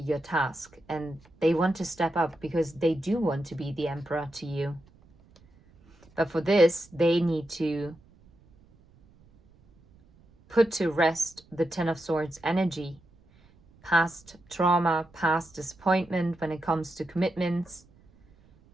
task. And they want to step up because they do want to be the emperor to you. But for this, they need to put to rest the 10 of Swords energy. Past trauma, past disappointment when it comes to commitments.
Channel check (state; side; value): noise; right; rumble, 29 dB below the sound